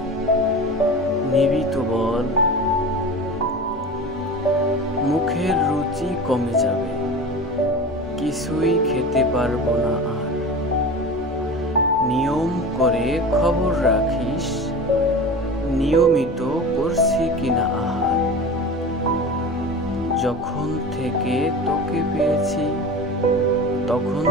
নিবি তো বল। মুখের রুচি কমে যাবে, কিছুই খেতে পারবো না আর। নিয়ম করে খবর রাখিস, নিয়মিত করছি কিনা আহার। যখন থেকে তোকে পেয়েছি, তখন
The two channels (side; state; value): both; normal; correlation 0.32